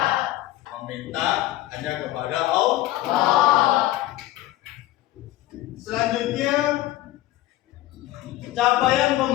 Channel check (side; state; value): right; quieter; 15.7 dB